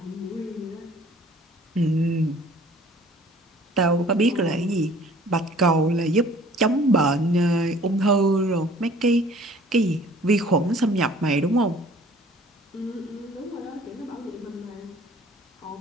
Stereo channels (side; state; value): both; normal; correlation 0.52